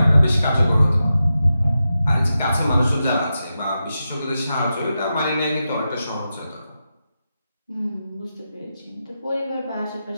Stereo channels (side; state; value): both; inverted; correlation -0.89